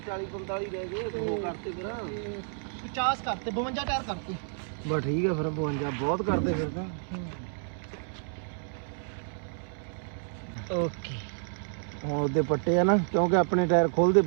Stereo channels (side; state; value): left; silent; 58 dB below the other